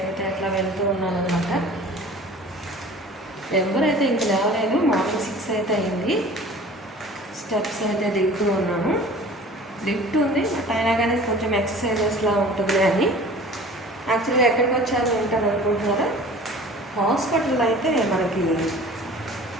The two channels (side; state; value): both; normal; correlation 0.44